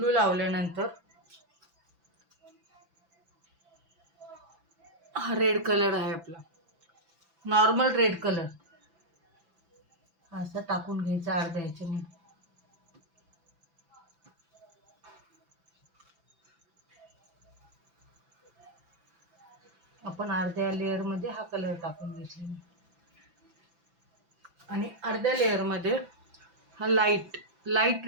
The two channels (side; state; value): left; late; 5.9 ms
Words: लावल्यानंतर हा रेड कलर आहे आपला, नॉर्मल रेड कलर, असं टाकून घ्यायचा अर्ध्या ह्याच्याने. आपण अर्ध्या लेअरमध्ये हा कलर टाकून घेतलेला आणि अर्ध्या लेअरमध्ये हा लाईट